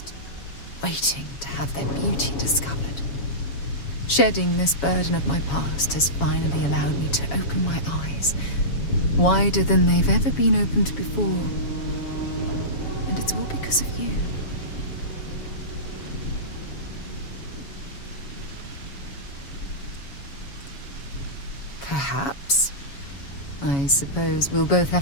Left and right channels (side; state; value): right; late; 7.2 ms